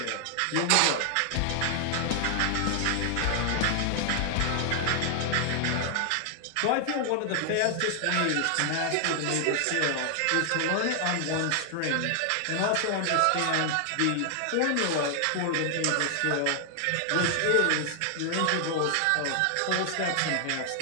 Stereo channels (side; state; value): both; different; correlation 0.00